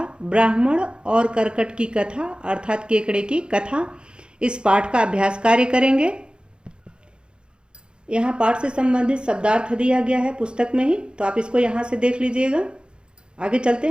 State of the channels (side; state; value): left; late; 0.052 ms